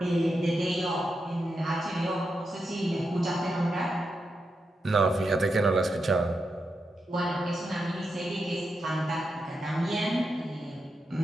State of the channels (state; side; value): normal; both; correlation 0.86